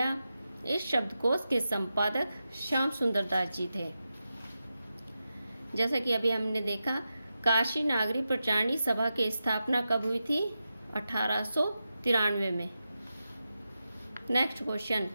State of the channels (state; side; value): inverted; both; correlation -0.90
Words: इस शब्दकोश के संपादक श्याम सुंदर दास जी थे। जैसा कि अभी हमने देखा, काशी नागरी प्रचारणी सभा की स्थापना कब हुई थी? 1893 में। नेक्स्ट क्वेश्चन,